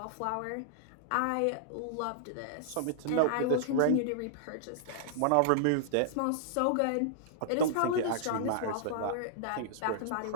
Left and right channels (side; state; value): both; different; correlation -0.01